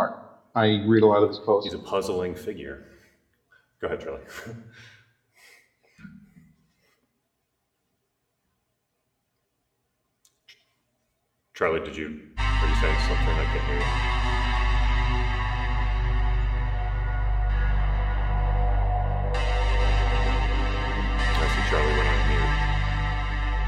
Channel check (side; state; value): both; identical; correlation 1.00